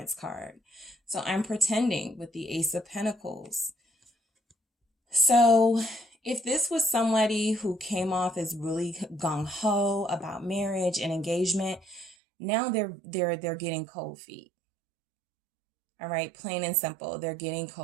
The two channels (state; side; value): drops out; left; at 12.2 s